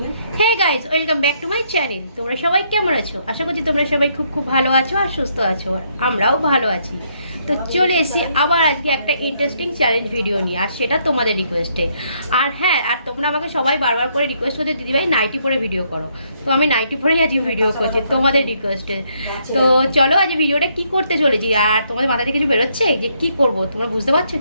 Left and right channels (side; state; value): both; inverted; correlation -0.72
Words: Hey guys, welcome back to my channel. তোমরা সবাই কেমন আছো? আশা করছি তোমরা সবাই খুব খুব ভালো আছো আর সুস্থ আছো, আর আমরাও ভালো আছি। তো চলে এসেছি আবার আজকে একটা ইন্টারেস্টিং চ্যালেঞ্জ ভিডিও নিয়ে, আর সেটা তোমাদের রিকোয়েস্টে। আর হ্যাঁ, আর তোমরা আমাকে সবাই বারবার করে রিকোয়েস্ট করতে, দিদিভাই নাইটি পরে ভিডিও করো। তো আমি নাইটি পরেই আজকে ভিডিও করছি তোমাদের রিকোয়েস্টে। তো চলো আজ ভিডিওটা কি করতে চলেছি, আর তোমাদের মাথায় কিছু বেরোচ্ছে যে কি করব? তোমরা বুঝতে পারছো